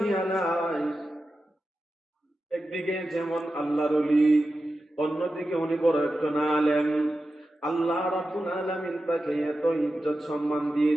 আলাইহি একদিকে যেমন আল্লাহর ওলি, অন্যদিকে উনি বড় একজন আলেম। আল্লাহ রাব্বুল আলামিন তাকে এত ইজ্জত সম্মান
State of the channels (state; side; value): normal; both; correlation 0.92